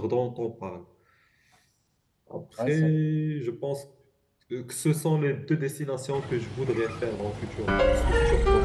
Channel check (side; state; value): both; identical; correlation 1.00